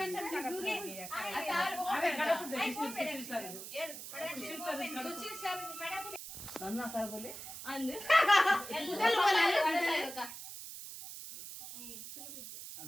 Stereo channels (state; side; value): noise; right; hiss, 10 dB below the sound